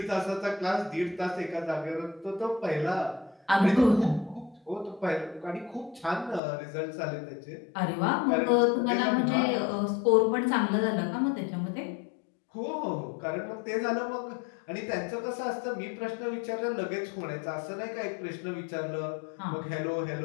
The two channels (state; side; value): drops out; right; at 6.4 s